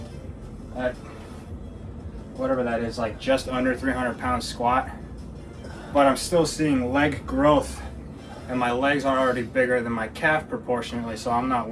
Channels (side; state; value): both; identical; correlation 1.00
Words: at whatever that is, like just under 300 pound squat, but I'm still seeing leg growth, and my legs are already bigger than my calf proportionately, so I'm not